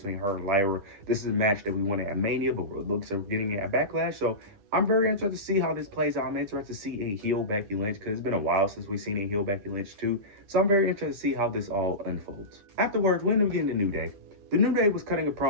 her and Lyra. This is a match that we wanted at Mania, but we're looks of getting it at Backlash. So I'm very interested to see how this plays out. I'm interested to see a heel Becky Lynch because it's been a while since we've seen a heel Becky Lynch too. So I'm very interested to see how this all unfolds. Afterwards, we end up getting the New Day. The New Day was cutting a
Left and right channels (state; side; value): late; left; 9.9 ms